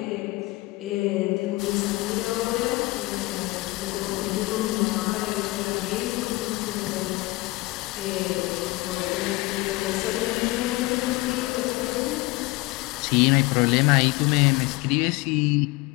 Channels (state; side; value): quieter; right; 21.9 dB